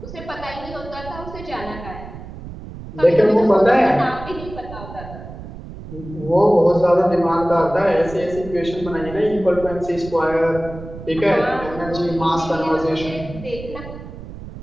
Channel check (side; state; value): right; noise; rumble, 13 dB below the sound